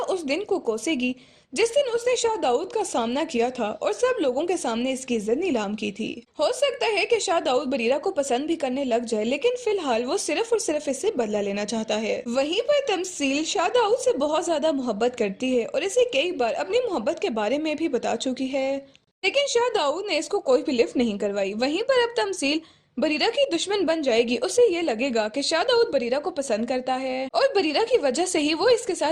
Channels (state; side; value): identical; both; correlation 1.00